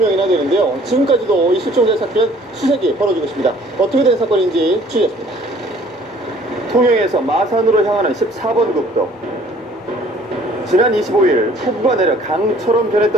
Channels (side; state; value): both; normal; correlation 0.55